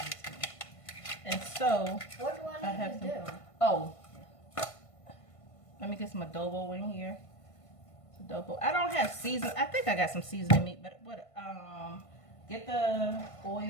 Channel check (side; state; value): right; late; 1.5 ms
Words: and so What do I have need to do? oh, let me get some adobo in here. Adobo. I don't have season. I think I got some seasoning meat, but what? Get the